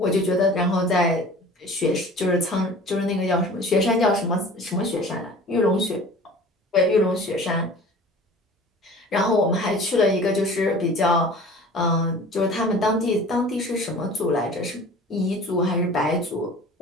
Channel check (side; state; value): both; normal; correlation 0.43